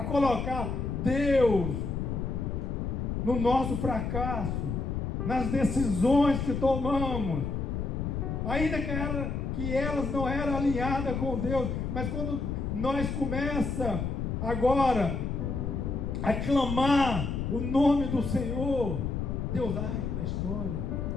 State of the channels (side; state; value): left; noise; rumble, 2 dB below the sound